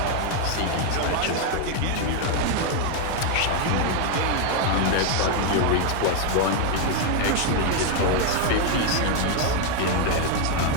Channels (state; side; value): different; both; correlation 0.01